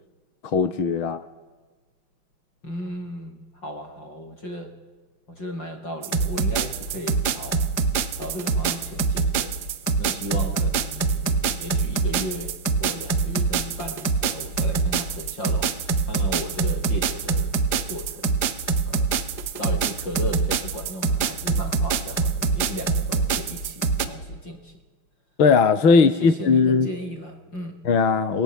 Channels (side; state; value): right; late; 5.0 ms